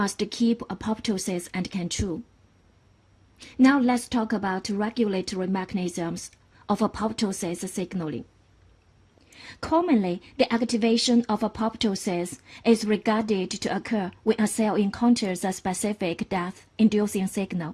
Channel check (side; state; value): both; identical; correlation 1.00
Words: keep apoptosis under control. Now let's talk about regulatory mechanisms of apoptosis signaling. Commonly, the activation of apoptosis is regarded to occur when a cell encounters a specific death-inducing